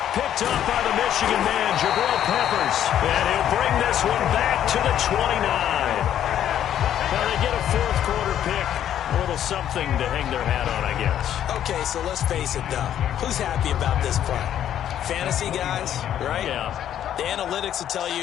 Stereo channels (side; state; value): right; quieter; 10.6 dB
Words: Picked up by the Michigan man, Jabril Peppers. And he'll bring this one back to the 29. Now they get a fourth quarter pick. A little something to hang their hat on, I guess. Okay, so let's face it, though. Who's happy about this play? Fantasy guys, right? Yeah. The analytics will tell